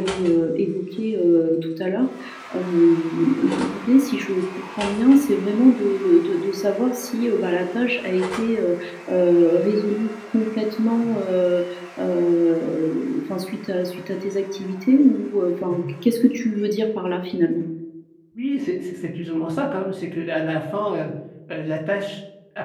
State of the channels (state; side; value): identical; both; correlation 1.00